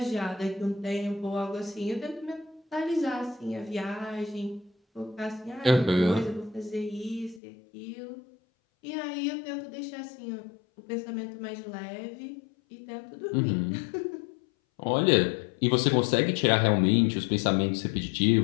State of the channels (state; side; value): drops out; right; at 7.4 s